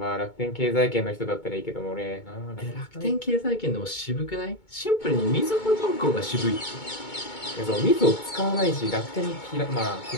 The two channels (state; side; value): late; right; 2.2 ms